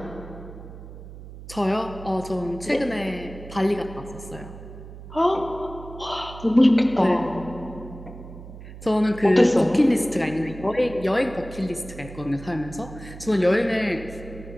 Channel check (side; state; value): right; noise; hum, 14 dB below the sound